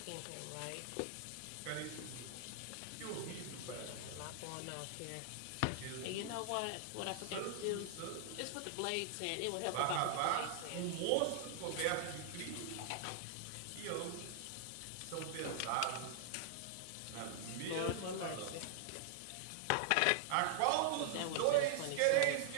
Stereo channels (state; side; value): different; both; correlation -0.01